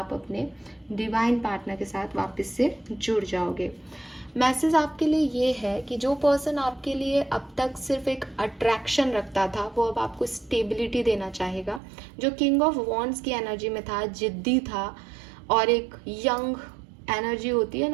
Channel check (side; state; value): left; drops out; at 11.8 s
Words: अपने डिवाइन पार्टनर के साथ वापस से जुड़ जाओगे। मैसेज आपके लिए ये है कि जो पर्सन आपके लिए अब तक सिर्फ एक अट्रैक्शन रखता था, वो अब आपको स्टेबिलिटी देना चाहेगा। जो किंग ऑफ वॉन्ड्स की एनर्जी में था, जिद्दी था और एक यंग एनर्जी होती है